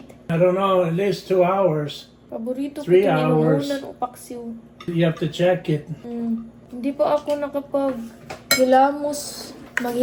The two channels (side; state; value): both; identical; correlation 1.00